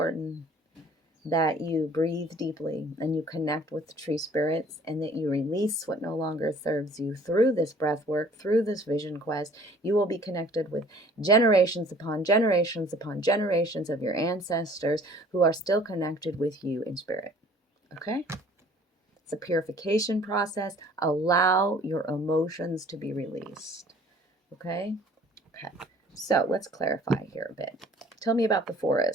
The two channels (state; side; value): normal; both; correlation 0.53